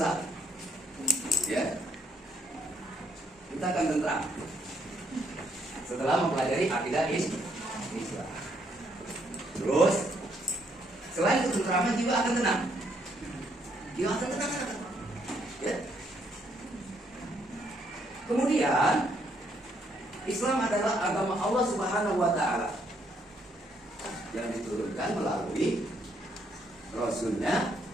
Ya, kita akan tentram setelah mempelajari akidah Islam. Terus selain ketentraman jiwa akan tenang. Jiwa akan tenang. Ya. Kemudian Islam adalah agama Allah Subhanahu wa Ta'ala yang diturunkan melalui Rasulnya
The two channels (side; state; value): both; normal; correlation 0.72